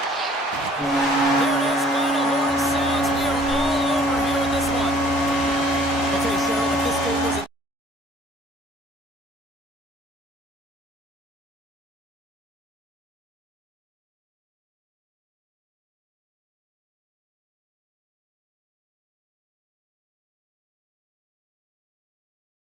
There it is, final horn sounds. We are all over here in this one. Okay, Cheryl, if this game was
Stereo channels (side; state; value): both; normal; correlation 0.55